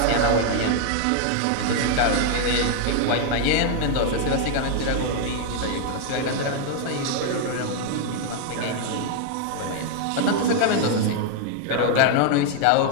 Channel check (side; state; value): both; different; correlation 0.00